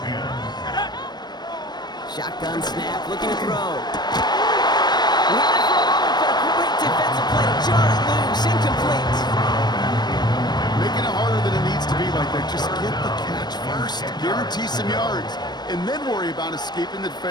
Shotgun snap, looking to throw. He had it for a moment, but a great defensive play to jar it loose, incomplete. Making it harder than it needs to be like that. Just get the catch first. Guarantee some yards. And then worry about escaping the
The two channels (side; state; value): right; late; 0.20 ms